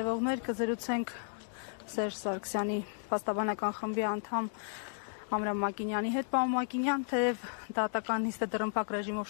կզրուցենք Սերժ Սարգսյանի փաստաբանական խմբի անդամ Ամրամ Մակինյանի հետ։ Պարոն Մակինյան, թեև դատական նիստը դռնփակ ռեժիմով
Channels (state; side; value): silent; right; digital silence